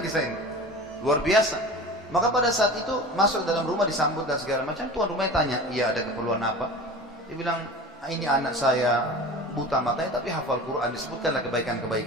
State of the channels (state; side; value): normal; both; correlation 0.36